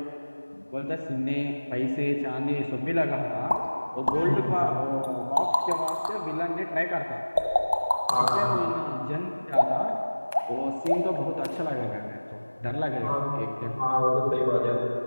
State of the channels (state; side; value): inverted; both; correlation -1.00